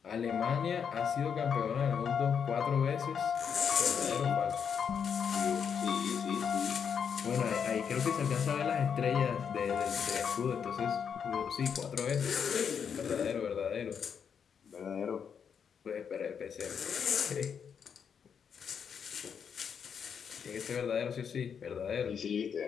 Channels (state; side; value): quieter; right; 7.1 dB